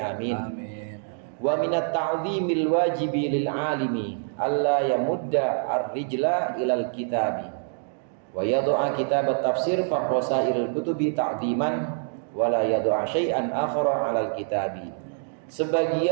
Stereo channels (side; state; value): left; silent; digital silence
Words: Amin. Wa minat ta'zimil wajibi lil alimi alla yamudda ar-rijla ilal kitabi wa yad'a kitab at-tafsir fa qasairil kutubi ta'ziman wa la yad'a syai'an akhara 'alal kitabi.